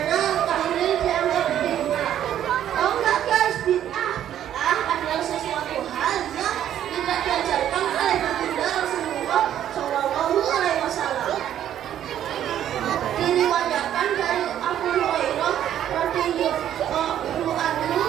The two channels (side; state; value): left; quieter; 10.9 dB